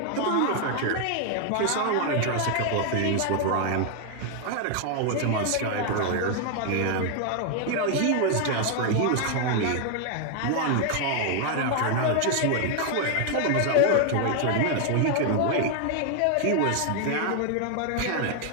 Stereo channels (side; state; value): both; different; correlation 0.00